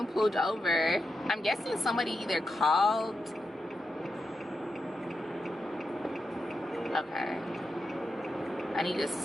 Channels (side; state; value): both; normal; correlation 0.87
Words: pulled over. I'm guessing somebody either called. Okay. I need to